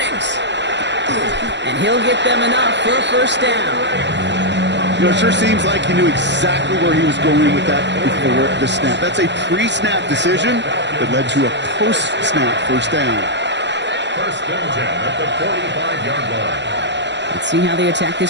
And he'll get them enough for a first down. You know, it sure seems like he knew exactly where he was going with that before the snap. That's a pre-snap decision that led to a post-snap first down. 1st and 10 at the 45-yard line. Let's see how they attack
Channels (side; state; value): left; late; 0.52 ms